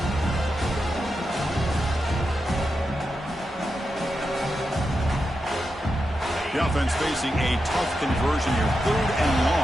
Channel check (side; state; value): both; normal; correlation 0.88